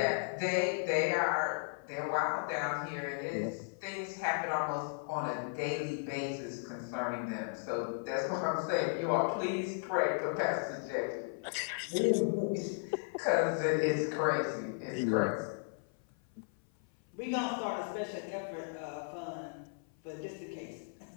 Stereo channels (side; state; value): right; silent; 54 dB below the other